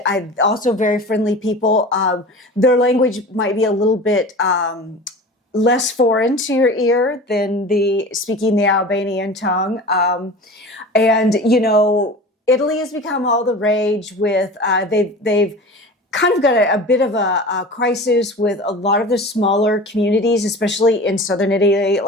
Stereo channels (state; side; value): normal; both; correlation 0.36